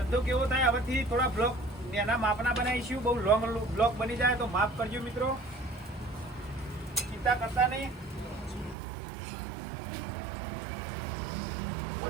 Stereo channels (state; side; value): drops out; left; at 8.8 s